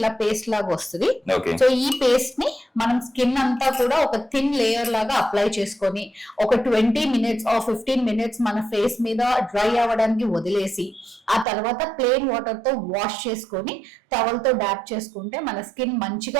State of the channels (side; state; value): left; drops out; at 11.5 s